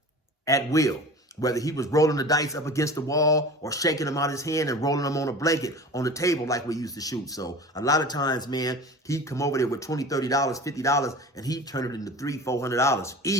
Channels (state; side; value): normal; both; correlation 0.37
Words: at will. Whether he was rolling the dice up against the wall or shaking them out his hand and rolling them on a blanket on the table like we used to shoot. So a lot of times, man, he'd come over there with $20, $30, $50, and he'd turn it into $300, $400